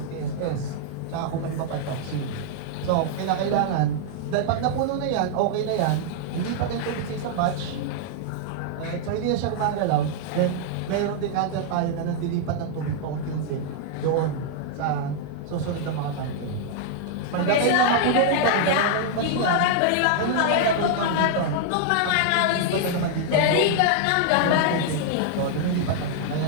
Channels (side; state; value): both; different; correlation -0.01